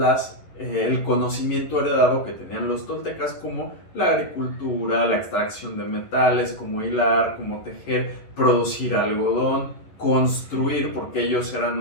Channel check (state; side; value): late; right; 11 ms